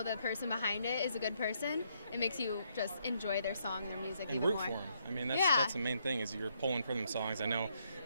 the person behind it is a good person, it makes you just enjoy their song, their music And even root more. for them. I mean, Yeah. that's the main thing is you're pulling for them songs. I know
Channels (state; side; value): inverted; both; correlation -0.74